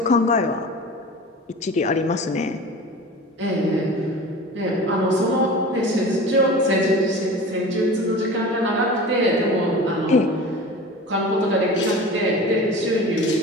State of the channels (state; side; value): normal; both; correlation 0.36